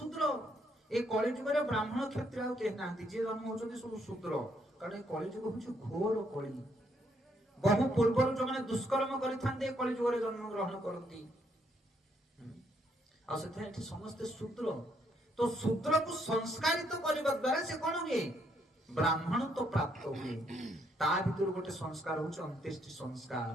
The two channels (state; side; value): normal; both; correlation 0.73